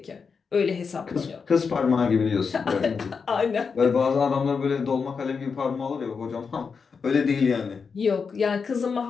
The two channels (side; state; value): right; quieter; 5.5 dB